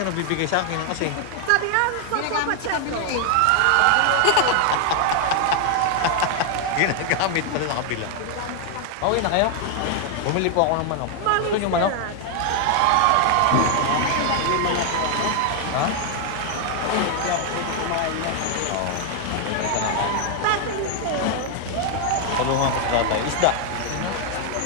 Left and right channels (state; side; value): different; both; correlation 0.00